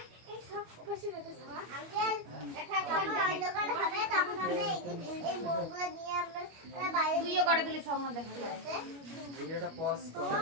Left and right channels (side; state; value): left; late; 25 ms